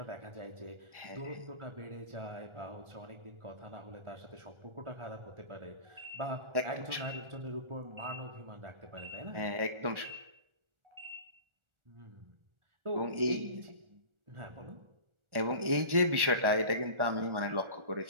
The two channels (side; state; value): left; late; 1.4 ms